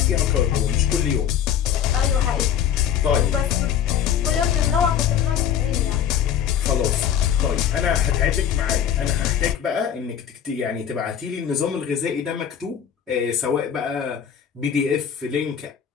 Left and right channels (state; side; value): quieter; right; 9.0 dB